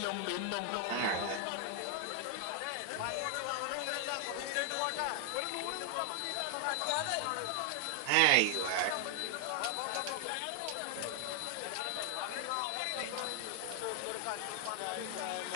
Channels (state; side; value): different; both; correlation 0.00